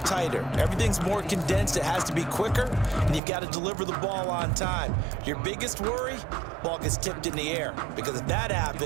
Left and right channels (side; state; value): left; drops out; at 3.2 s